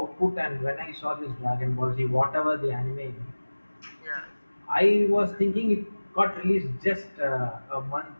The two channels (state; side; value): inverted; both; correlation -1.00